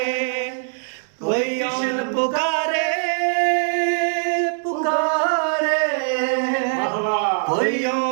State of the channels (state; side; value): silent; left; digital silence